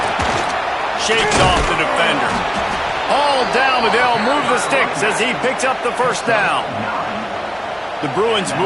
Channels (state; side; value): identical; both; correlation 1.00